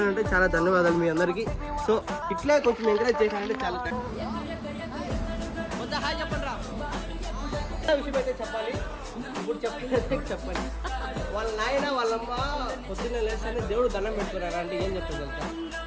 అంటే చాలా ధన్యవాదాలు మీ అందరికీ. సో ఇట్లే కొంచెం ఎంకరేజ్ చేశానంటే చాలా విషయం అయితే చెప్పాలి. ఇప్పుడు చెప్పాలి వాళ్ళ నాయన వాళ్ళమ్మ పొద్దున్నే లేస్తానే దేవుడు దండం పెట్టుకున్నారా అంటే ఏం చెప్తాను తెలుసా,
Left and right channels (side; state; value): both; identical; correlation 1.00